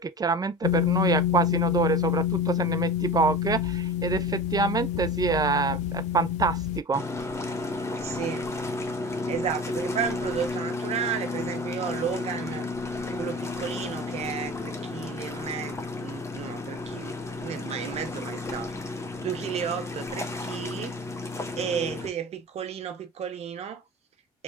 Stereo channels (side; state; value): both; normal; correlation 0.34